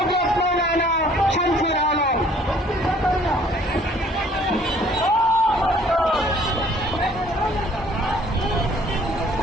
মাওলানা শামসুল আলম।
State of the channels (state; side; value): normal; both; correlation 0.57